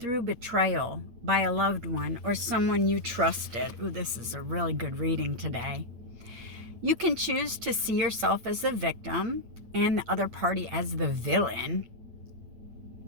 betrayal by a loved one or someone you trusted? Ooh, this is a really good reading today. You can choose to see yourself as the victim and the other party as the villain.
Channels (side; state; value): left; late; 8.5 ms